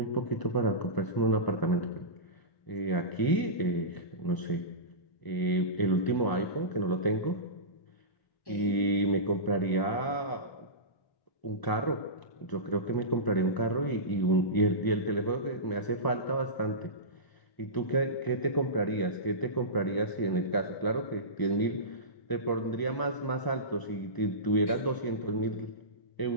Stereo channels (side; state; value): right; late; 1.0 ms